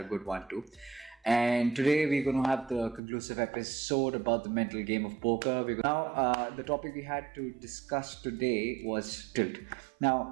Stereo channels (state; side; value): drops out; left; at 3.0 s